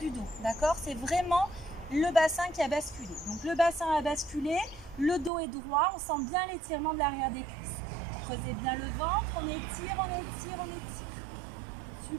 dos. D'accord? C'est vraiment le bassin qui a basculé. Donc le bassin a basculé, le dos est droit. On sent bien l'étirement de l'arrière des cuisses. Creusez bien le ventre. On étire, on étire, on étire.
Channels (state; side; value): drops out; left; at 5.3 s